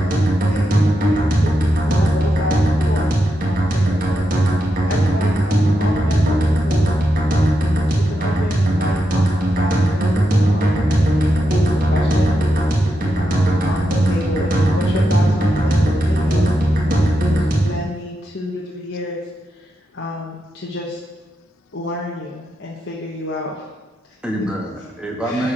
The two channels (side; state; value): both; normal; correlation 0.85